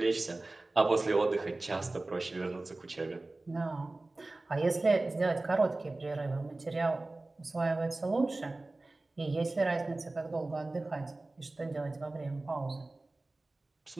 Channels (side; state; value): left; quieter; 3.0 dB